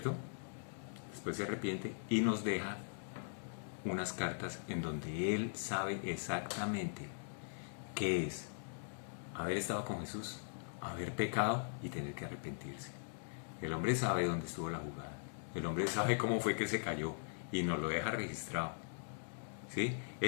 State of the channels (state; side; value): silent; right; digital silence